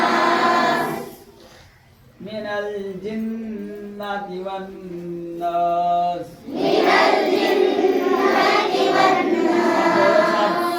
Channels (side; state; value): both; identical; correlation 1.00